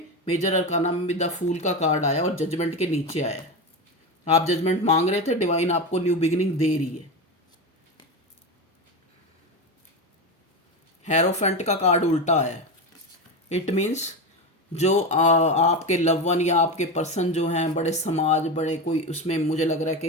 मेजर अरकाना में भी द फूल का कार्ड आया और जजमेंट के नीचे आया। आप जजमेंट मांग रहे थे, डिवाइन आपको न्यू बिगिनिंग दे रही है। हेरोफेंट का कार्ड उल्टा है। इट मीन्स जो आपके लव वन या आपके पर्सन जो हैं, बड़े समाज, बड़े कोई, उसमें मुझे लग रहा है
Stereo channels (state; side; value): normal; both; correlation 0.18